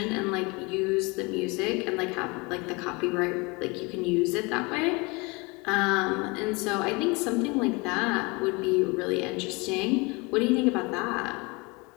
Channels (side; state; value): right; quieter; 27.3 dB